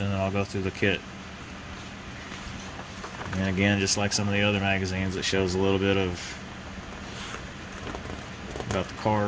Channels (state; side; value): identical; both; correlation 1.00